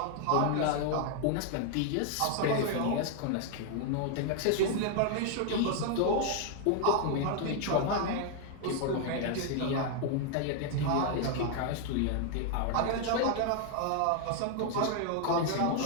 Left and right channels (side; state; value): both; different; correlation 0.00